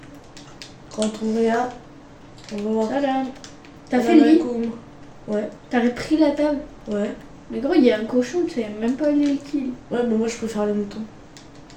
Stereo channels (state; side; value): identical; both; correlation 1.00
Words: Quand on regarde, on va voir. Salam. T'as fait le lit? Ouais, T'as repris la table? ouais. Mais gros, il y a un cochon, tu sais même pas aller le kill. Ouais, mais moi je préfère les moutons.